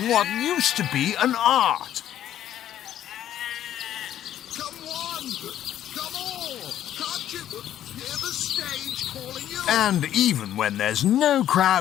what used to be an art. Come on! Come all! Can't you hear the stage calling you? And even when there's no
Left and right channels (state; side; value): quieter; right; 11.5 dB